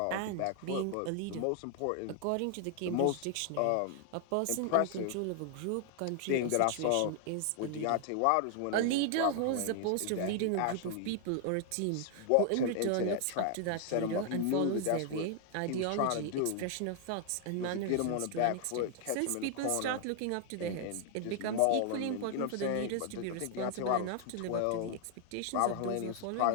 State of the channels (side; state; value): both; different; correlation 0.00